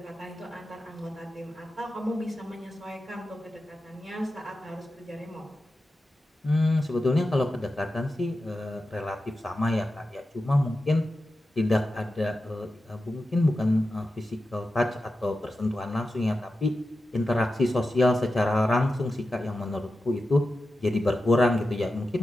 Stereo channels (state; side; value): normal; both; correlation 0.92